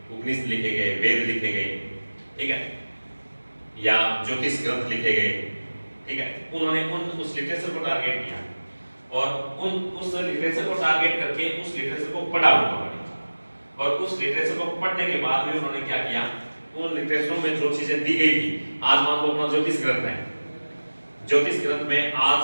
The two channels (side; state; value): both; inverted; correlation -1.00